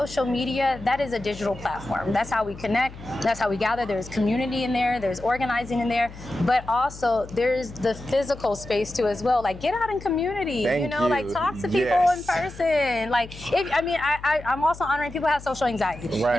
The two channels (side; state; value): left; noise; hum, 16 dB below the sound